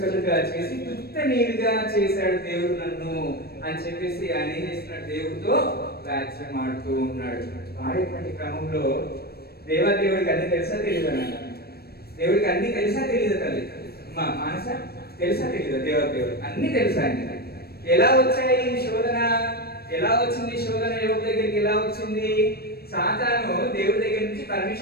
చేసి తుత్త నీరుగా చేశాడు దేవుడు నన్ను అని చెప్పేసి ఆయన ఏం చేస్తున్నాడు? దేవుడితో వాక్యం ఆడుతూ ఉన్నాడు. ఆడేటువంటి క్రమంలో దేవుడికి అన్ని తెలుసా తెలియదు? దేవుడికి అన్ని తెలుసా తెలియదు? తల్లి మా మానస తెలుసా తెలియదు? దేవుడు అన్ని తెలుసా? ఎలా వచ్చాయి శోధన? ఎలా వచ్చింది శోధన? యోగు దగ్గరికి ఎలా వచ్చింది? సాతాను దేవుడి దగ్గర నుంచి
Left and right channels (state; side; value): late; right; 0.46 ms